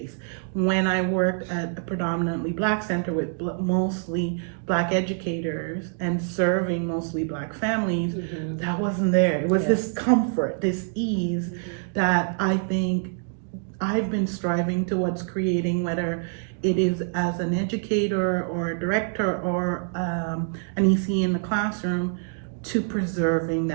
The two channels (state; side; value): silent; left; 59 dB below the other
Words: When I worked at a predominantly Black center with mostly Black educators and serving mostly Black families, that wasn't there. It was this comfort, this ease that I think I've been striving towards creating, whether it is as an educator or a director or an EC in the classroom, to preserving